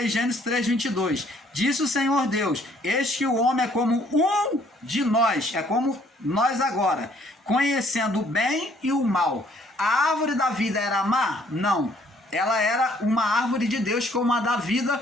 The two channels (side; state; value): both; normal; correlation 0.63